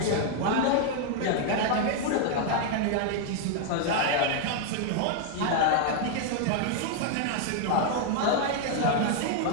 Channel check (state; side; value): different; both; correlation 0.00